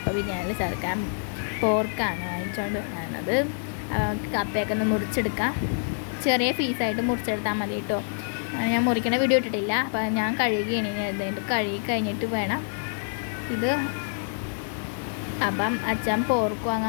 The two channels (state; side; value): silent; right; digital silence